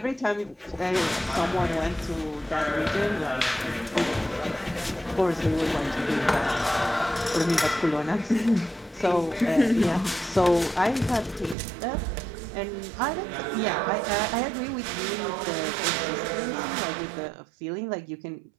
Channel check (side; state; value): left; drops out; at 11.6 s